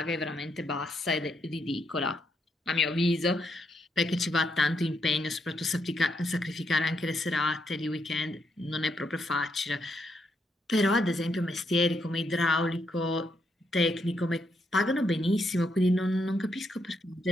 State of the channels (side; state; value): both; normal; correlation 0.78